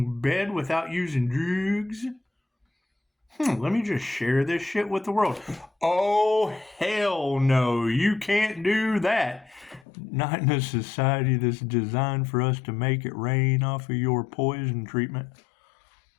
bed without using drugs. Let me just share this shit with the world. Oh, hell no. You can't do that. Not in a society that's designed for us to make it rain off of your poison treatment.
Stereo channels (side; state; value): right; drops out; at 9.9 s